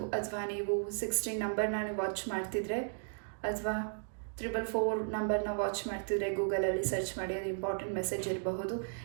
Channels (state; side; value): silent; left; digital silence